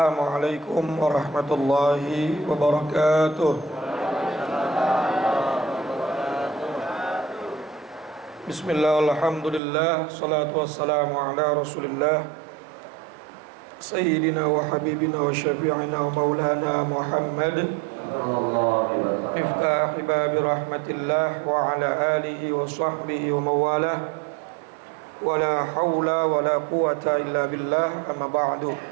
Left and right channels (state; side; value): drops out; left; at 9.6 s